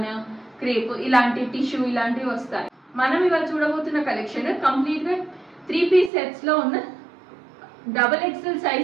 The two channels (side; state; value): left; drops out; at 6.1 s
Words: క్రేప్ ఇలాంటి టిష్యూ ఇలాంటివి వస్తాయి. మనం ఇవాళ చూడబోతున్న కలెక్షన్ కంప్లీట్గా 3 పీస్ సెట్స్లో ఉన్న XXL